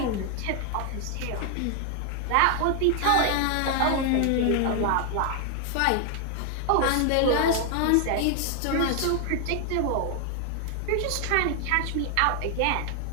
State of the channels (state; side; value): different; both; correlation 0.00